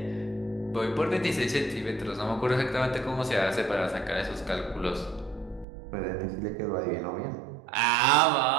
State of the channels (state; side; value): drops out; left; at 5.7 s